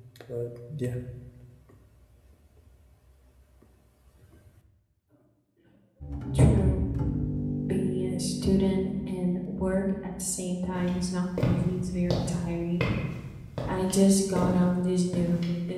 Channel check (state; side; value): identical; both; correlation 1.00